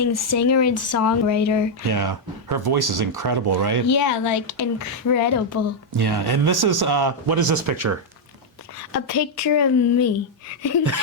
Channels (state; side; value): normal; both; correlation -0.01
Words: singer and songwriter. Yeah. Her voice is incredible, right? Yeah, like incredible. Yeah. And this is, what is this picture? A picture of me.